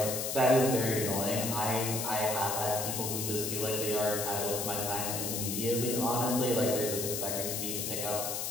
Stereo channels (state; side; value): noise; left; hiss, 2 dB below the sound